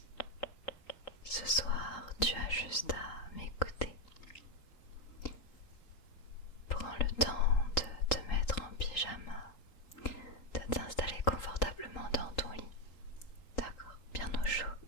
Ce soir, tu as juste à m'écouter. Prends le temps de te mettre en pyjama, de t'installer confortablement dans ton lit. D'accord, bien au chaud.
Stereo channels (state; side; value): late; right; 3.8 ms